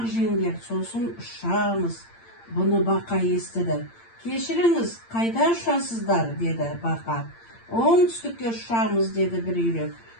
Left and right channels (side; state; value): right; late; 8.8 ms